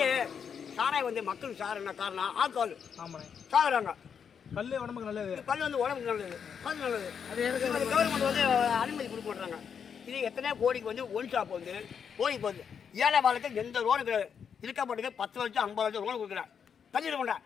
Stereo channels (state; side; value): quieter; right; 7.1 dB